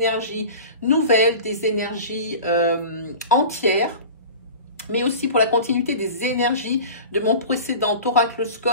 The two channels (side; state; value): both; inverted; correlation -0.36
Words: nouvelles, des énergies entières, mais aussi pour la continuité des énergies de mon précédent